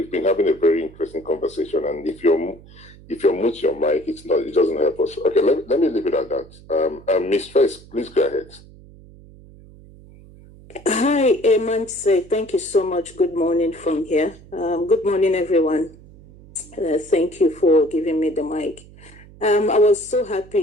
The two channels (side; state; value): right; noise; hum, 22 dB below the sound